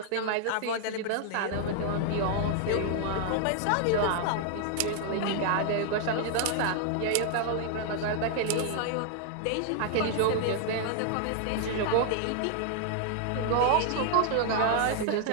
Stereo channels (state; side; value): different; both; correlation 0.00